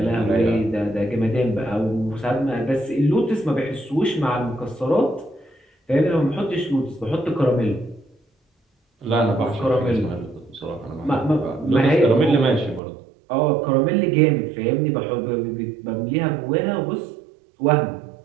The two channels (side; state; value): left; drops out; at 12.8 s